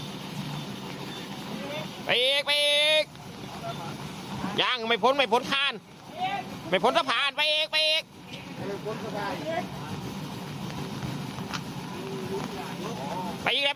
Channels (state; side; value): identical; both; correlation 1.00